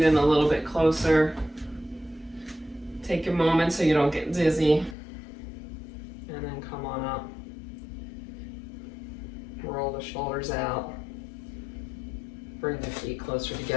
in a little bit closer. Take a moment so you don't get dizzy. And then come on up. Roll the shoulders out. Bring the feet closer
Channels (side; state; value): right; drops out; at 5.0 s